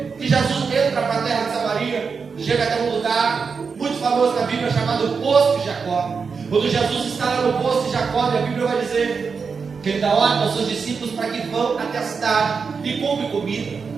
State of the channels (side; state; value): left; quieter; 5.4 dB